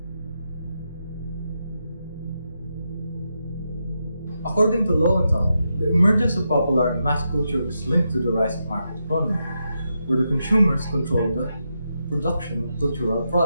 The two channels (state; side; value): inverted; both; correlation -0.85